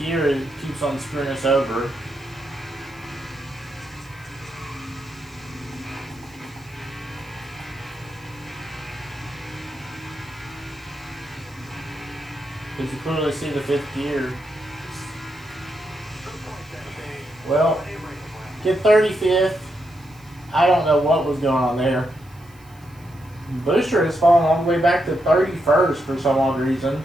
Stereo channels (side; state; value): right; noise; hiss, 28 dB below the sound